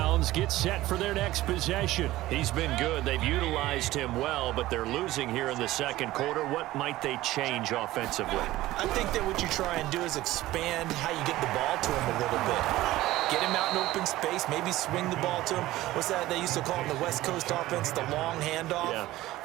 gets set for their next possession. He's been good. They've utilized him well, but they're losing here in the second quarter. What might they change offensively? I think that what you try and do is expand how you get the ball to him a little bit. Get him out in open space, maybe swing the ball to him. What's that they used to call in the West Coast offense, the long handoff? Yeah.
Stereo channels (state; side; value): quieter; left; 16.5 dB